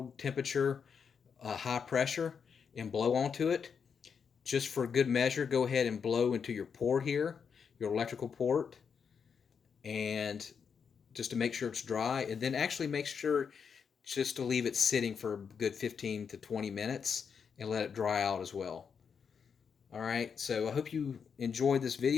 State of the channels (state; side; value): quieter; right; 6.5 dB